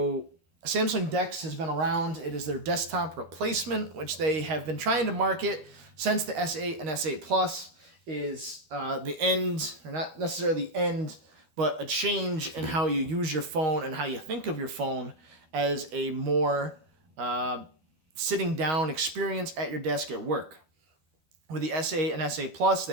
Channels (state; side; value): late; left; 12 ms